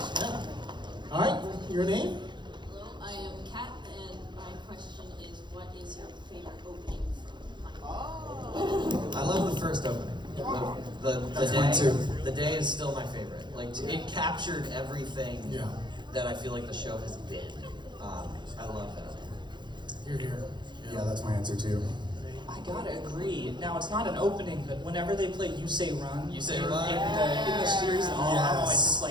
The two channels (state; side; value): late; left; 0.22 ms